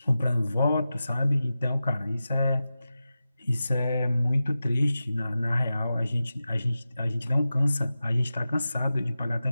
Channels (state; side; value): inverted; both; correlation -0.93